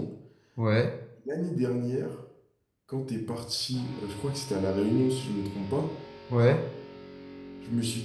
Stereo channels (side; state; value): both; identical; correlation 1.00